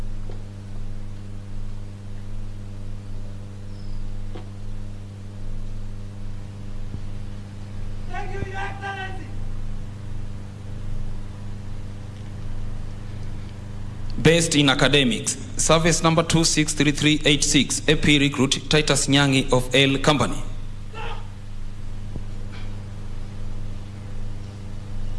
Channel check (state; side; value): identical; both; correlation 1.00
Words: Thank you, Your Excellency. Based in academics, service number 263386, AP recruit Titus Nyangi of L Company.